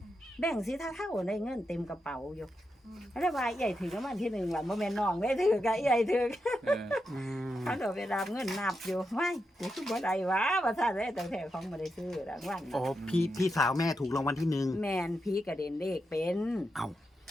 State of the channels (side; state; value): both; normal; correlation 0.86